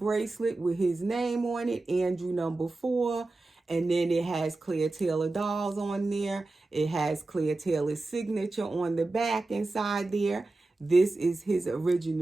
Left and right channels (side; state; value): left; quieter; 3.2 dB